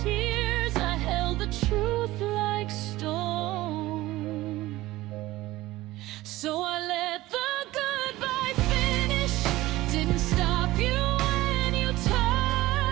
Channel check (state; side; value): quieter; left; 17.5 dB